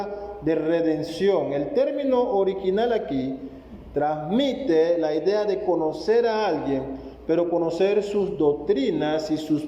de redención. El término original aquí transmite la idea de conocer a alguien, pero conocer sus doctrinas y sus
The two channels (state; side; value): identical; both; correlation 1.00